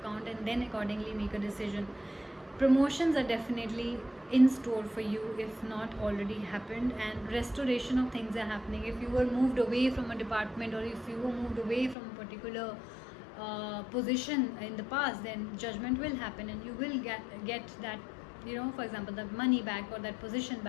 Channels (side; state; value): right; drops out; at 12.0 s